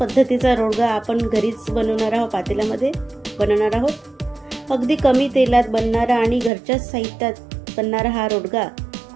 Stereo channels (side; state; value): left; drops out; at 6.5 s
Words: रोडगा आपण घरीच बनवणार आहोत, पातेल्यामध्ये बनवणार आहोत. अगदी कमी तेलात बनणारा आणि घरच्याच साहित्यात बनणारा हा रोडगा